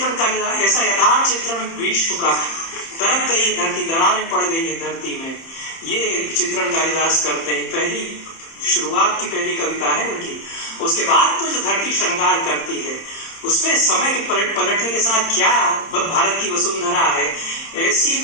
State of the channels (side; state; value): right; late; 30 ms